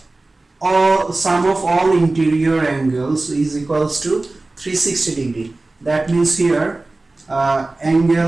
sum of all interior angles is equals to 360 degree. That means here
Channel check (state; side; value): quieter; left; 3.1 dB